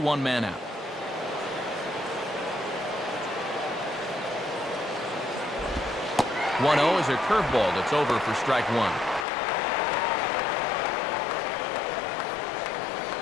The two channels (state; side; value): drops out; right; at 9.2 s